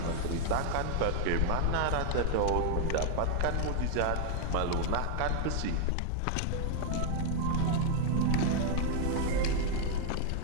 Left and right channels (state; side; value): different; both; correlation 0.00